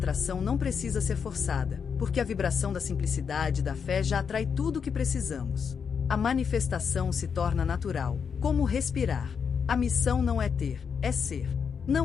não precisa ser forçada, porque a vibração da simplicidade e da fé já atrai tudo o que precisamos. A manifestação se torna natural, como respirar. A missão não é ter, é ser.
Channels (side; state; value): right; quieter; 6.5 dB